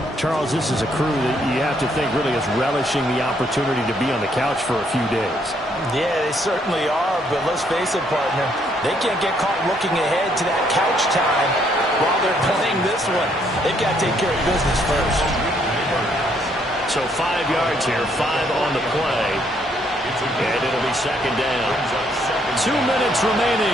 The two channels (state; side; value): normal; both; correlation 0.70